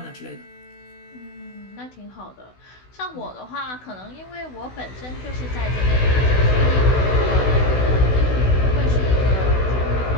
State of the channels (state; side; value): late; right; 16 ms